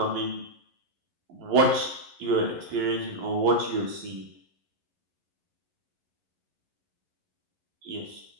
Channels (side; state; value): left; late; 11 ms